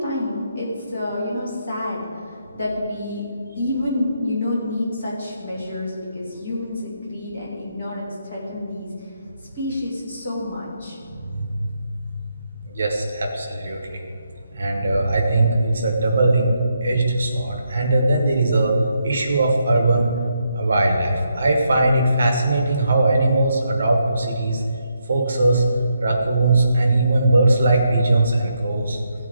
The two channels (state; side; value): inverted; both; correlation -0.79